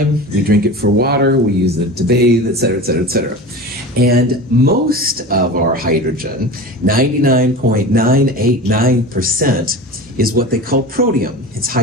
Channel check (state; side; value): normal; both; correlation 0.32